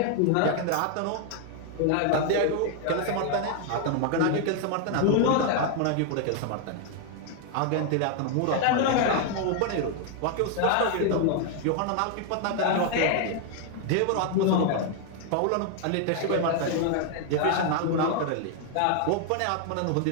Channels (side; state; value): both; different; correlation 0.00